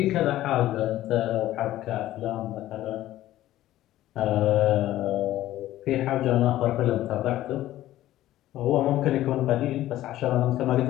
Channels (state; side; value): quieter; right; 14.4 dB